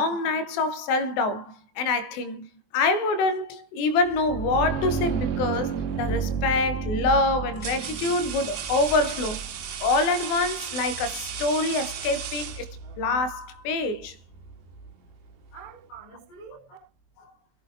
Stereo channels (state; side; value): late; right; 24 ms